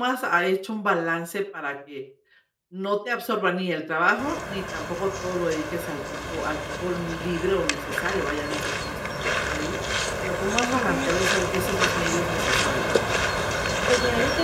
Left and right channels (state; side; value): identical; both; correlation 1.00